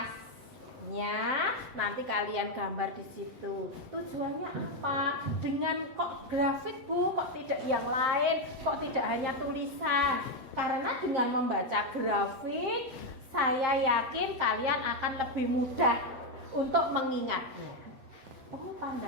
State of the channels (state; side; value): late; left; 8.1 ms